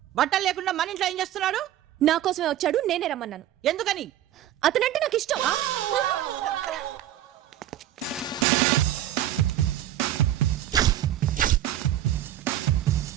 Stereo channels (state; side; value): quieter; left; 12.5 dB